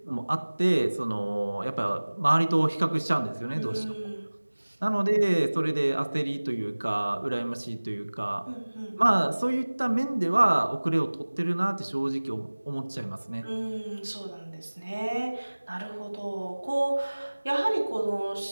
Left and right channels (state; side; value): inverted; both; correlation -1.00